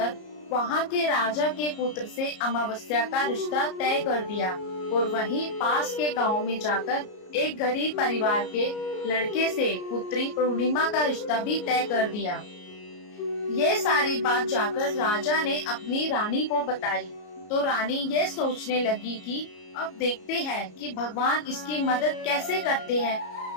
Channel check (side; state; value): right; late; 33 ms